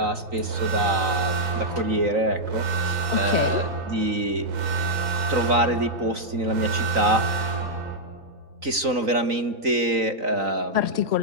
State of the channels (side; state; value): left; late; 3.9 ms